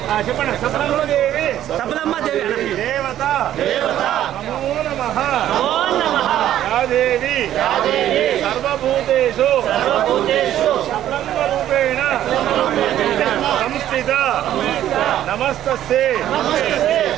చెప్పండి. సఫలమ్మ దేవి, సఫలమ్మ దేవి, దేవత, నమో నమః, యాదేవి సర్వభూతేషు సఫలమ్మ రూపేణ సంస్థిత నమస్తస్యై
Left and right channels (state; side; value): quieter; left; 12.0 dB